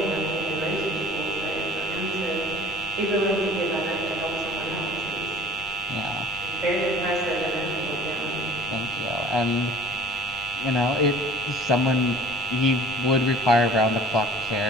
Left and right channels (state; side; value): noise; left; rumble, 19 dB below the sound